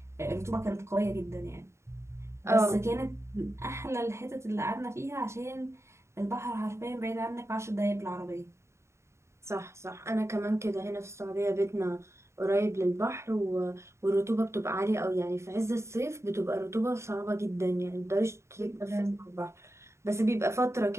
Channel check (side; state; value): left; late; 0.13 ms